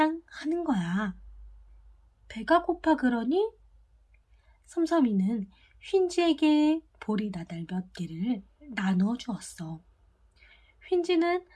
하는 거야. 배가 고파 그러니 섬섬이는 휜지에게 보리 나달 몇 개를 나누어 주었어. 휜지는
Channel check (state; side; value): identical; both; correlation 1.00